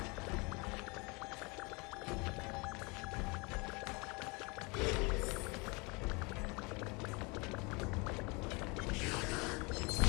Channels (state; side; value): quieter; right; 28.2 dB